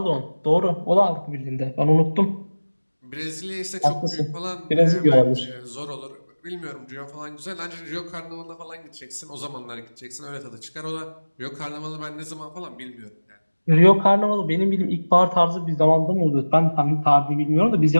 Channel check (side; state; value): both; inverted; correlation -1.00